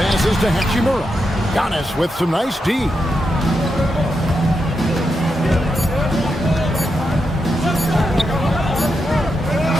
to Hachimura. Giannis with some nice D.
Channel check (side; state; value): both; normal; correlation 0.85